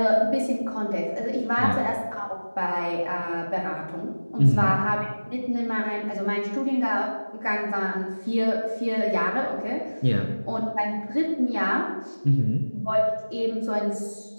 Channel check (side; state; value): both; inverted; correlation -1.00